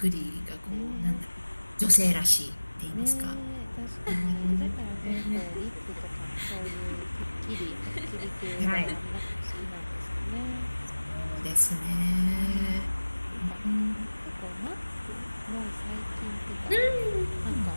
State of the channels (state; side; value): inverted; both; correlation -1.00